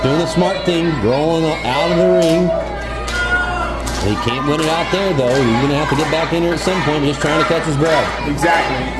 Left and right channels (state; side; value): identical; both; correlation 1.00